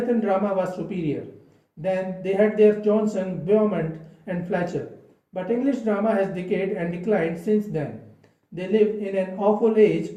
drama was superior. Then they had their Johnson, Beaumont, and Fletcher. But English drama has decayed and declined since then. They live in an awful age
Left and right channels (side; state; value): both; identical; correlation 1.00